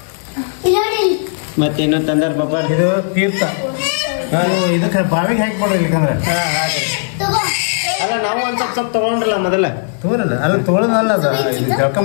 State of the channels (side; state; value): right; silent; 56 dB below the other